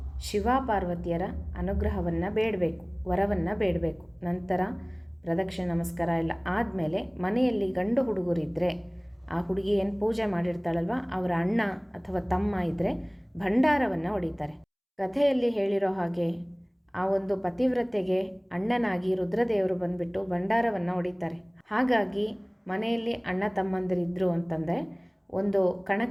ಶಿವ ಪಾರ್ವತಿಯರ ಅನುಗ್ರಹವನ್ನು ಬೇಡಬೇಕು, ವರವನ್ನು ಬೇಡಬೇಕು. ನಂತರ ಪ್ರದಕ್ಷಿಣೆ ನಮಸ್ಕಾರ ಎಲ್ಲ ಆದಮೇಲೆ ಮನೆಯಲ್ಲಿ ಗಂಡು ಹುಡುಗರಿದ್ದರೆ ಆ ಹುಡುಗಿ ಏನು ಪೂಜೆ ಮಾಡಿರ್ತಾಳಲ್ವ ಅವರ ಅಣ್ಣ ಅಥವಾ ತಮ್ಮ ಇದ್ದರೆ ಭಂಡಾರವನ್ನು ಹೊಡಿತಾರೆ. ಕಥೆಯಲ್ಲಿ ಹೇಳಿರೋ ಹಾಗೆ ಆ ಒಂದು ಪತಿವ್ರತೆಗೆ ಅಣ್ಣನಾಗಿ ರುದ್ರದೇವರು ಬಂದುಬಿಟ್ಟು ಭಂಡಾರವನ್ನು ಹೊಡಿತಾರೆ. ಹಾಗಾಗಿ ಮನೆಯಲ್ಲಿ ಅಣ್ಣ ತಮ್ಮಂದಿರಿದ್ದರು ಅಂತಂದರೆ ಒಂದು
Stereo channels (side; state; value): both; identical; correlation 1.00